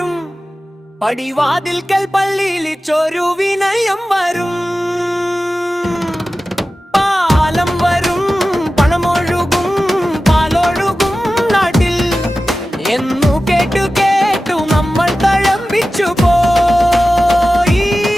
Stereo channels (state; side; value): normal; both; correlation 0.95